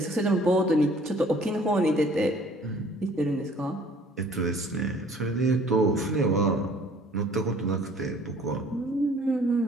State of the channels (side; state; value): both; normal; correlation 0.54